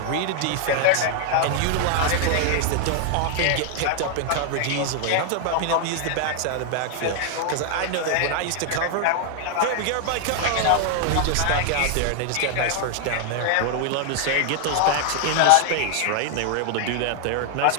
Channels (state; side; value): different; both; correlation 0.00